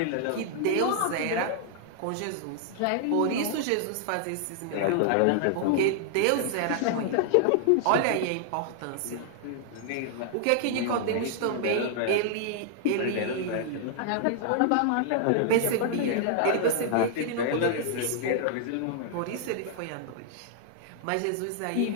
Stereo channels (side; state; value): both; different; correlation -0.01